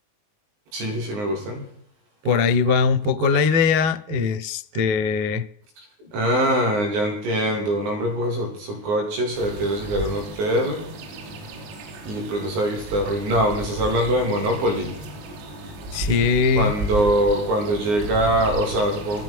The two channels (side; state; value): left; late; 19 ms